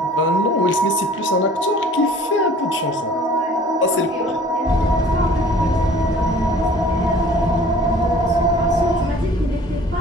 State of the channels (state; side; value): normal; both; correlation 0.50